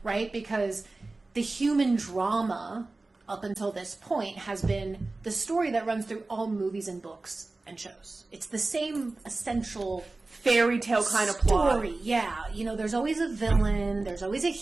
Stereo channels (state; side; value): quieter; left; 3.3 dB